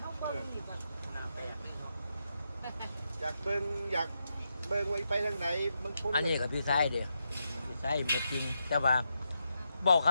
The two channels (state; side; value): inverted; both; correlation -0.84